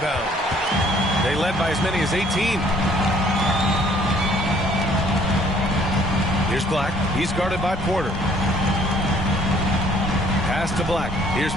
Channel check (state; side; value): normal; both; correlation 0.60